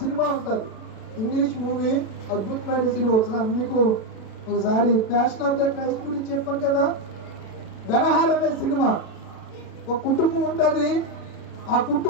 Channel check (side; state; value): right; late; 36 ms